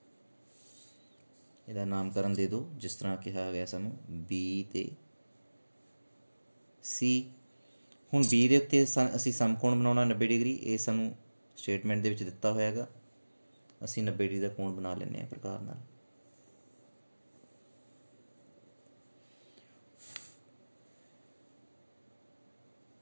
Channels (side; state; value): both; inverted; correlation -1.00